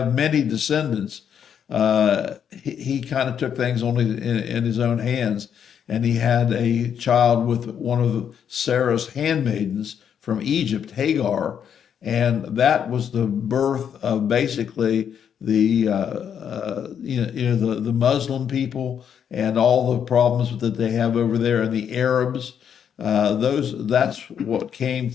many descendants, he kind of took things only in his own hands. And he had a child with one of Sarah's handmaidens from Egypt, Hagar, and that was the birth of basically the Muslim people and all the problems that they have over there, and the Arabs. That's what came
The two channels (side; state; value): right; quieter; 8.3 dB